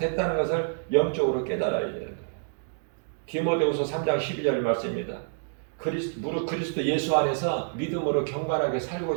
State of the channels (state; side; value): silent; left; digital silence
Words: 것을 영적으로 깨달아야 되는 거예요. 디모데후서 3장 12절 말씀입니다. 무릇 그리스도 예수 안에서 믿음으로 경건하게